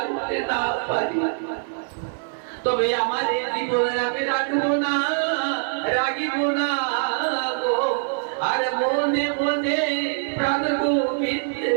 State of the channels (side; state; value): left; silent; digital silence